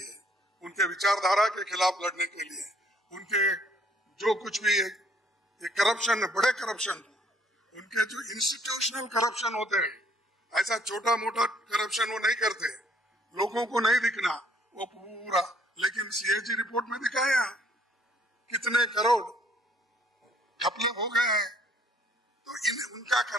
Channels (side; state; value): both; normal; correlation 0.63